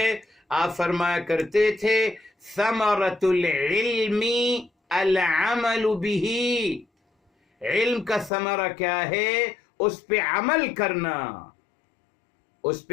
آپ فرمایا کرتے تھے ثمرۃ العلم العمل به. علم کا ثمرہ کیا ہے؟ اس پہ عمل کرنا. اس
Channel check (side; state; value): right; drops out; at 8.3 s